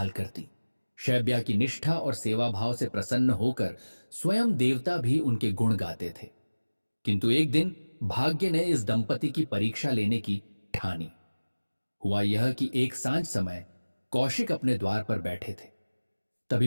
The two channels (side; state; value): both; inverted; correlation -1.00